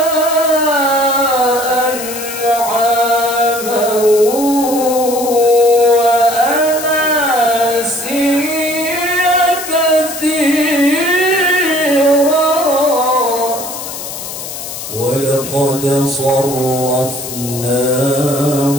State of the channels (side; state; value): left; noise; hiss, 9 dB below the sound